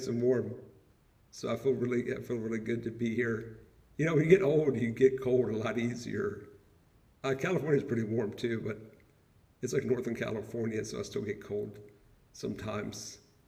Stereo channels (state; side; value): identical; both; correlation 1.00